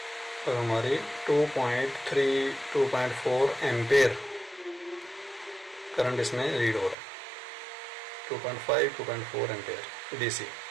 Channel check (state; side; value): drops out; left; at 7.0 s